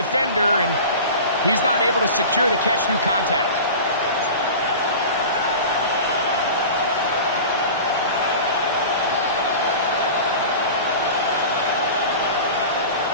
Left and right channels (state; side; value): inverted; both; correlation -0.34